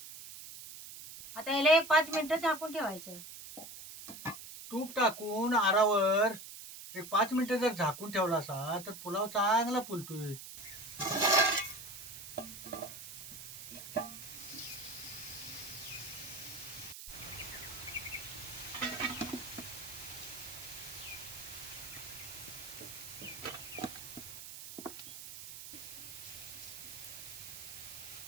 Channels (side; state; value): right; noise; hiss, 11 dB below the sound